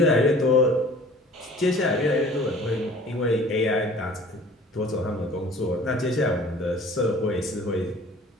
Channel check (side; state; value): both; normal; correlation 0.48